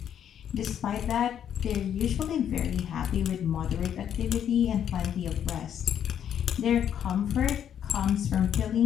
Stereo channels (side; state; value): right; quieter; 9.3 dB